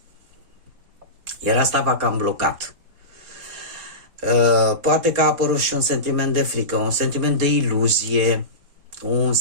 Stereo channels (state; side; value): late; left; 4.2 ms